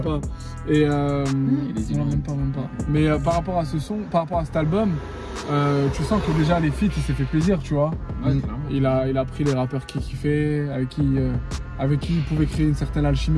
pas. Et il est non, illuminé. même pas. Mais par rapport à ce son, par rapport à cet album, tu sens que déjà les feats, il s'est fait plaisir, tu vois. Ouais, clairement. Il a pris les rappeurs qu'il kiffait, avec qui il pouvait créer une certaine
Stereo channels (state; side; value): identical; both; correlation 1.00